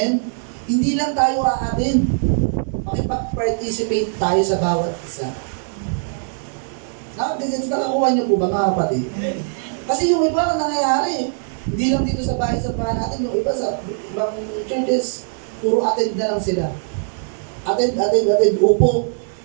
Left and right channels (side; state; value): left; silent; digital silence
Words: Hindi lang tayo aatin. Makipag-participate tayo sa bawat isa. Nakakuha niyo po ba mga kapatid? Kasi yung iba ang nangyayari. Hindi lang dito sa bahay sa bahay natin, yung iba sa ibang churches, puro attend na lang sila. Attend, upo,